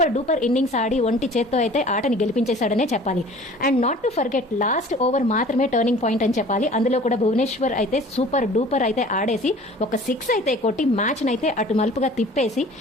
డూపర్ ఇన్నింగ్స్ ఆడి ఒంటి చేత్తో అయితే ఆటని గెలిపించేశాడనే చెప్పాలి. And not to forget last over మాత్రమే టర్నింగ్ పాయింట్ అని చెప్పాలి. అందులో కూడా భువనేశ్వర్ అయితే సూపర్ డూపర్ అయితే ఆడేసి ఒక 6 అయితే కొట్టి మ్యాచ్ నైతే అటు మలుపుగా తిప్పేసి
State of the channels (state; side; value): normal; both; correlation 0.47